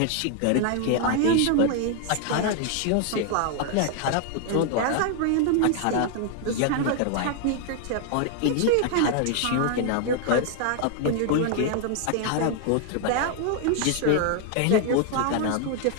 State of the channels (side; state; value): both; different; correlation 0.00